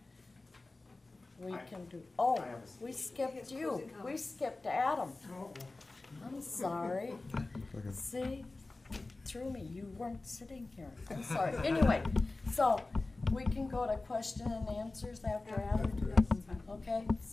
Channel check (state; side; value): quieter; right; 3.2 dB